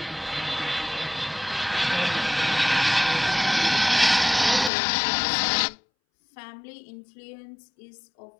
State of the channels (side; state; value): right; drops out; at 4.7 s